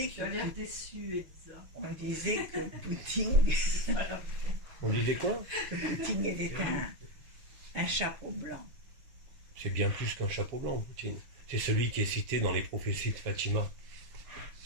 que... Tu as l'air déçu, Elisa. On disait que Poutine... On disait quoi? Que Poutine était un chapeau blanc. C'est bien plus qu'un chapeau blanc, Poutine. C'est celui qui est cité dans les prophéties de Fatima.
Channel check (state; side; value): late; left; 6.8 ms